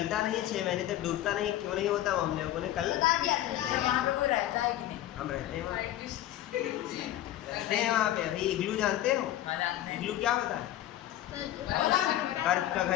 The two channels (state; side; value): quieter; right; 13.5 dB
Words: नहीं है, 6 महीने तक डूबता नहीं। क्यों नहीं होता वो हम लोगों ने कल वहाँ पे कोई रहता है कि नहीं? हम रहते हैं वहाँ, रहते हैं वहाँ पे। अभी इग्लू जानते हो? इग्लू क्या होता है? बर्फ का